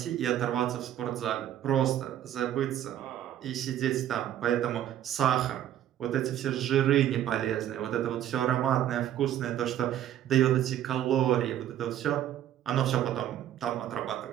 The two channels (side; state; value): left; quieter; 11.5 dB